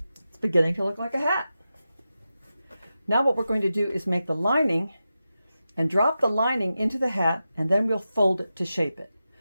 It's beginning to look like a hat. Now what we're going to do is make the lining and drop the lining into the hat, and then we'll fold it to shape it.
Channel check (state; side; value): inverted; both; correlation -0.91